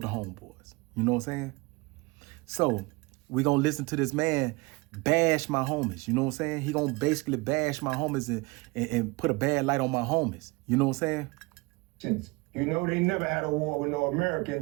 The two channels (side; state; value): left; quieter; 25.1 dB